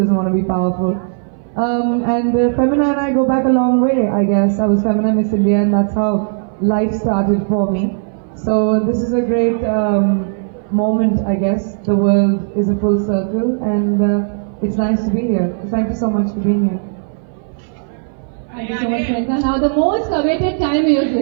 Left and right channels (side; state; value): left; silent; 61 dB below the other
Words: want to be powerful? And Femina and I go back a long way, I guess. I was Femina Miss India, and that's how life started for me. So this is a great moment, I guess. The world is a full circle, and it's nice to be here. Thank you so much for being here. Thank you so much, Priyanka. Now the most awaited time is